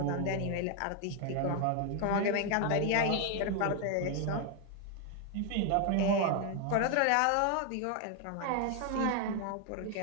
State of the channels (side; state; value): both; different; correlation 0.00